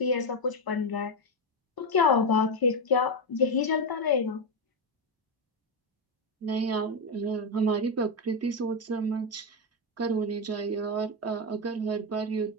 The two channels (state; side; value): normal; both; correlation 0.08